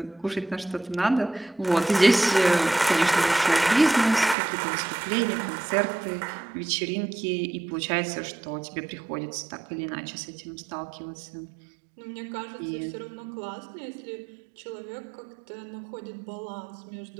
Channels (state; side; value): drops out; left; at 4.4 s